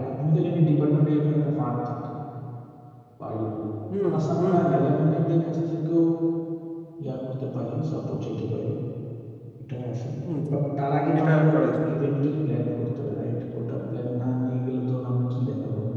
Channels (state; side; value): identical; both; correlation 1.00